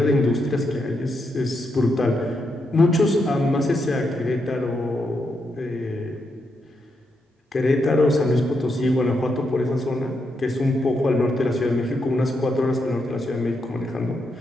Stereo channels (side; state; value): both; normal; correlation 0.82